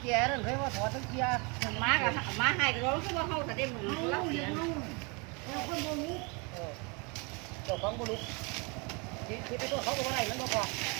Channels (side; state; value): left; quieter; 30.8 dB